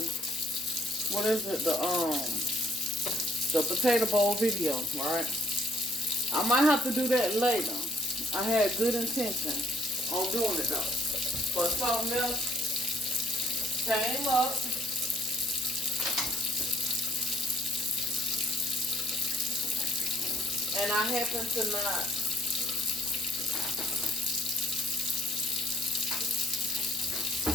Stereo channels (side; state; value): both; normal; correlation 0.63